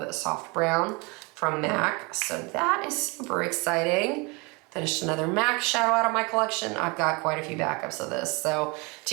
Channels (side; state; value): left; quieter; 28.0 dB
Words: soft brown from MAC. So that is super exciting. Finished another MAC shadow out of my collection. I've got quite a few backups of this. So